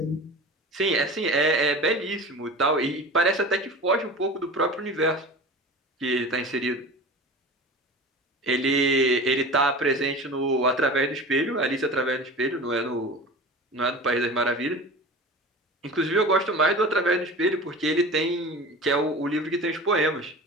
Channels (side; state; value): both; normal; correlation 0.35